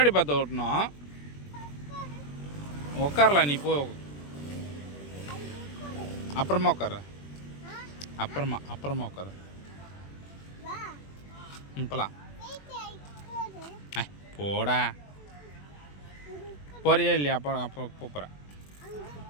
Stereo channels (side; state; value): right; late; 21 ms